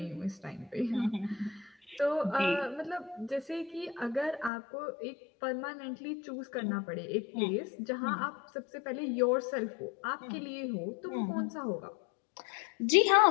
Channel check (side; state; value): right; drops out; at 4.5 s